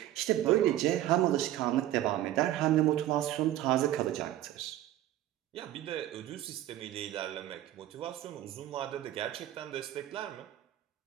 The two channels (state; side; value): quieter; left; 13.6 dB